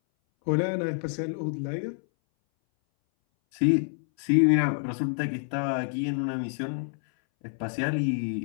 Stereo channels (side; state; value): right; silent; 59 dB below the other